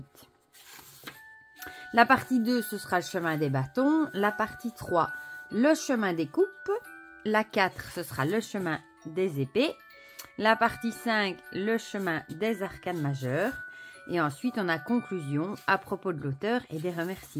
La partie 2, ce sera le chemin des bâtons. La partie 3, le chemin des coupes. La 4, ce sera le chemin des épées. La partie 5, le chemin des arcanes majeures. Et ensuite, on a conclusion à propos de l'auteur et des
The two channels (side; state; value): both; identical; correlation 1.00